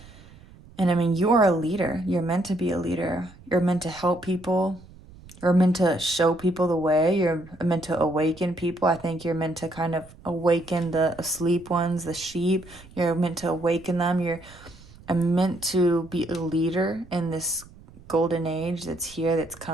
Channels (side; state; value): right; noise; rumble, 22 dB below the sound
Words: And I mean, you are a leader. You're meant to be a leader. You're meant to help people. You're meant to show people the way. You're meant to awaken people. I think you're meant to kind of awaken the asleep ones, the sheep. You're meant to awaken them. You're meant to be a leader in this golden age that's here, that's